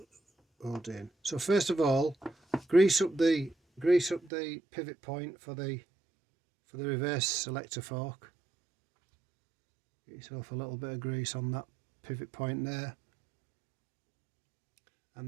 holds in. So first of all, grease up the pivot point for the reverse selector fork. Get yourself a little bit of grease on that pivot point there,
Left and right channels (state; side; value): drops out; left; at 4.3 s